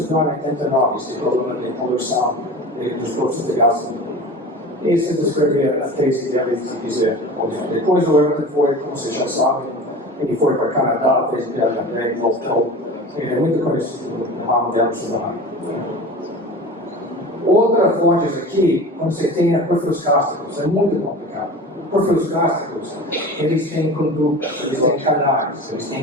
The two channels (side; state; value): both; normal; correlation 0.34